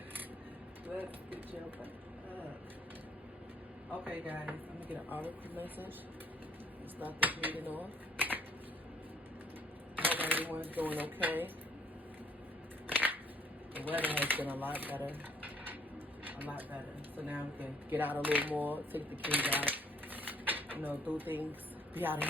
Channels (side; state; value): both; normal; correlation 0.63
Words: Let's get your butt up. Okay, guys, I'm gonna get an article message. Let's start this reading off. Hope everyone's doing okay. The weather has been a lot better. So now we can get out a little more, take the kids out, do things, be out in